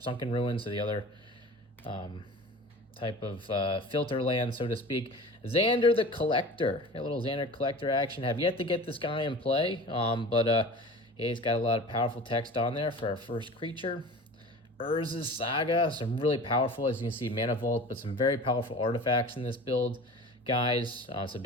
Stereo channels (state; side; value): normal; both; correlation 0.38